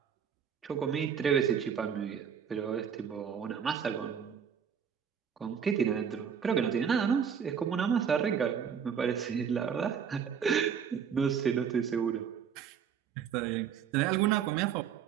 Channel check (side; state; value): left; quieter; 7.5 dB